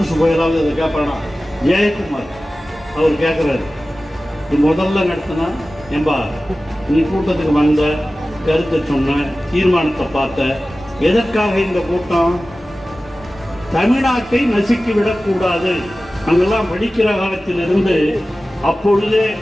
போயலாவது அதை கேட்பானா? ஜெயக்குமார் அவர் கேட்குறாரு, முதல்ல நடத்தினா ஏம்பா நீ கூட்டத்துக்கு வந்த, கருத்தை சொன்ன, தீர்மானத்தை பார்த்த, எதற்காக இந்த கூட்டம்? தமிழ்நாட்டை நசுக்கி விடக்கூடாது. அங்கெல்லாம் படிக்கிற காலத்திலிருந்து அப்பொழுதே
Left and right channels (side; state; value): both; normal; correlation 0.96